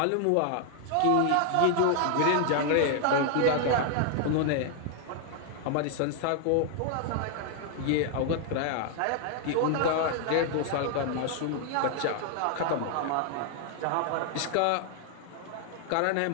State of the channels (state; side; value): different; both; correlation 0.00